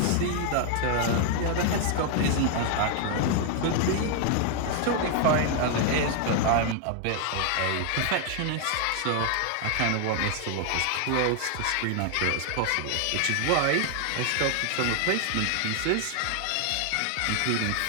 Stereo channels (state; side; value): different; both; correlation 0.00